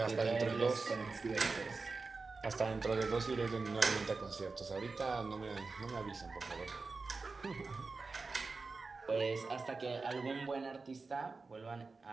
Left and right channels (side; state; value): left; quieter; 4.1 dB